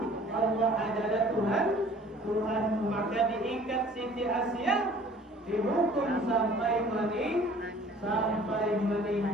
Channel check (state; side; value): normal; both; correlation 0.51